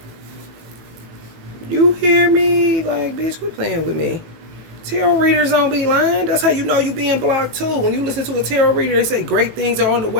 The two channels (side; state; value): left; late; 18 ms